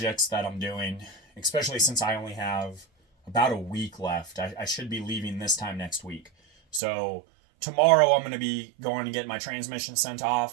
that I'm doing, especially since I only have about a week left. I should be leaving this time next week. So tomorrow I'm going to be going to get my transmission sent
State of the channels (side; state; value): left; drops out; at 6.8 s